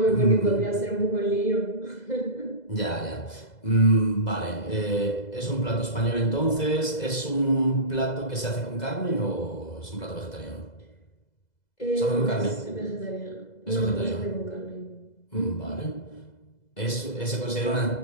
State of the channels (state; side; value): late; right; 2.0 ms